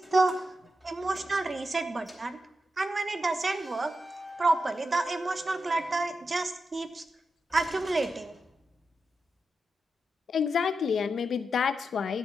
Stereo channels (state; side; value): normal; both; correlation 0.88